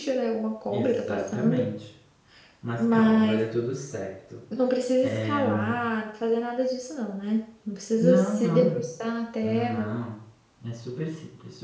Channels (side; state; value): both; identical; correlation 1.00